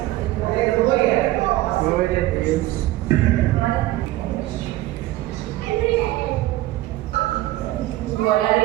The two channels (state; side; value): quieter; left; 16.5 dB